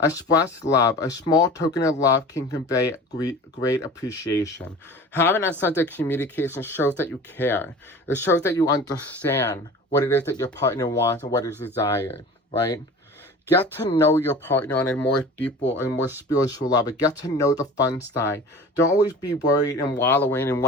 love. A small token of love can convey great appreciation. Having that sense of communication shows that you care. It shows that you understand what it is that your partner wants and what is desired, right? Get to know your partner on a more deeper and more spiritual level. Get to know the fun side. Don't always be worried and wallowing in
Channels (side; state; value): both; normal; correlation 0.39